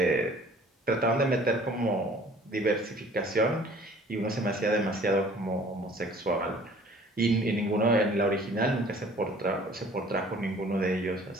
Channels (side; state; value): both; normal; correlation 0.52